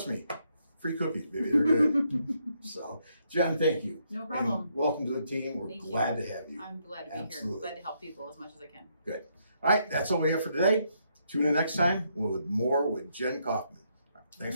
me, free cookies, baby, they're good. So, Jen, thank you. No problem. And welcome to the team. We're Thank you. glad to have you. I'm glad to be Absolutely. here. Glad to help people as much as I can. Good. All right, that's all we have for today. Tune in next time with more with Jen Kaufman.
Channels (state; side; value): inverted; both; correlation -0.75